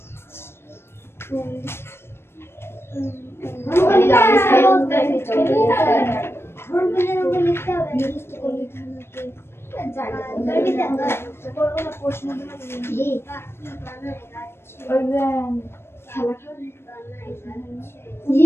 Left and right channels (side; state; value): right; late; 0.12 ms